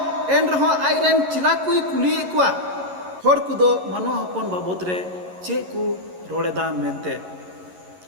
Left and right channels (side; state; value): left; late; 11 ms